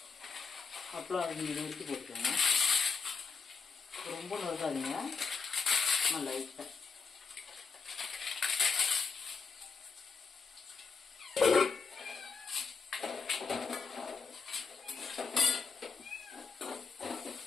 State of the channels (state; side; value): quieter; right; 5.0 dB